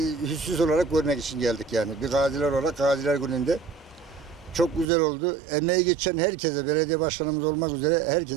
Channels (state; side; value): drops out; left; at 4.9 s